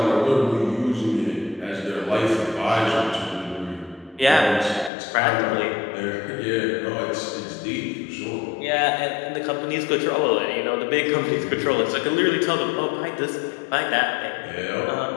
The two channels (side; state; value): right; drops out; at 4.9 s